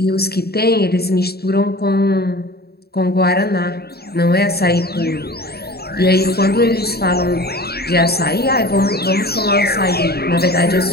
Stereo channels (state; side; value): late; right; 0.46 ms